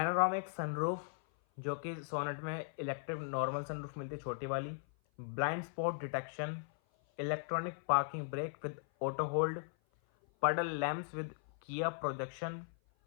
सनरूफ, जो कि सोनेट में इलेक्ट्रिक नॉर्मल सनरूफ मिलती है छोटी वाली। Blind spot detection, electronic parking brake with auto hold, puddle lamps with Kia projection,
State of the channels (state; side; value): silent; right; 53 dB below the other